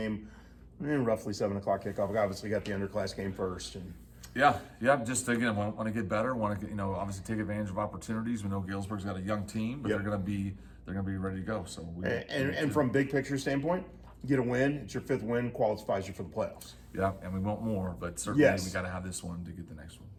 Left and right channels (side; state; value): both; identical; correlation 1.00